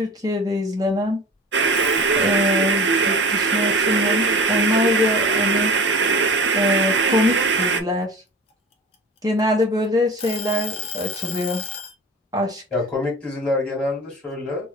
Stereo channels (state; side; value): normal; both; correlation 0.37